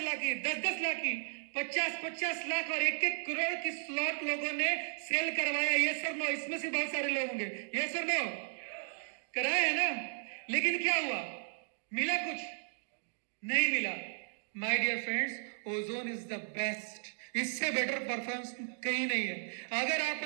की, 10-10 लाख की, 50-50 लाख और 1-1 करोड़ की स्लॉट लोगों ने सेल करवाया। यस और नो? इसमें से बहुत सारे लोग होंगे। यस और नो? कराया है ना? लेकिन क्या हुआ? मिला कुछ? नहीं मिला। My dear friends, ozone is the best. इससे बेटर परफॉर्मेंस कहीं नहीं है। अगर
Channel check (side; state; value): left; silent; digital silence